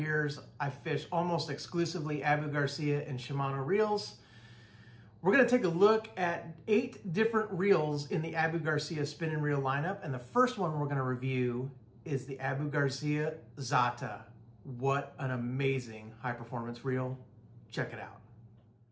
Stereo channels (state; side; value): identical; both; correlation 1.00